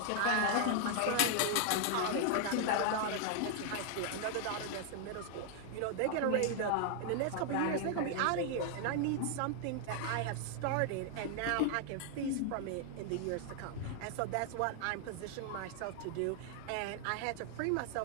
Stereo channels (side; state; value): both; different; correlation 0.00